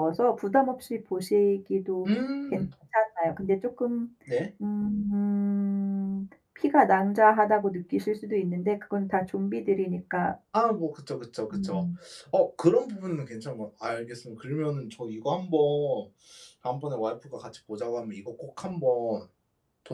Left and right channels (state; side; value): identical; both; correlation 1.00